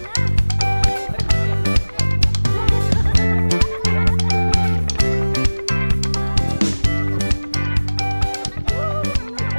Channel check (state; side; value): inverted; both; correlation -1.00